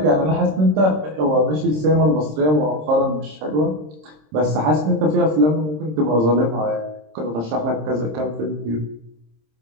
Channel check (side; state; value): left; late; 26 ms